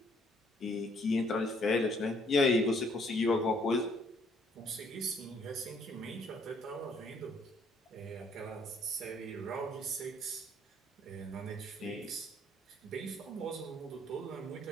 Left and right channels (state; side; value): normal; both; correlation 0.65